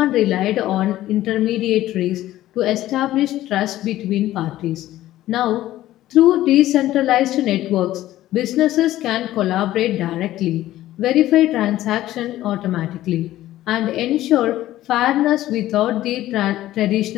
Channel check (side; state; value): right; quieter; 14.6 dB